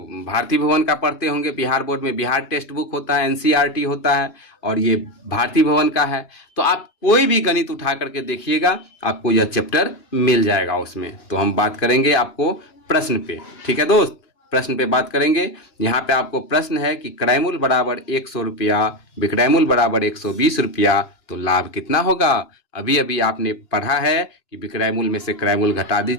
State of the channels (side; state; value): right; late; 2.9 ms